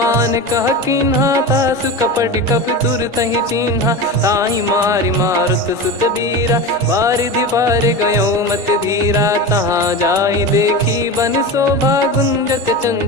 कह कीन्हा तासु कपट कप तुर तहि चिन्हा। ताहि मारि मारुत सुत बीरा बारिधि पार गयो मत धीरा। तहाँ जाई देखी बन शोभा गुंजत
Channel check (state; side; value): normal; both; correlation 0.25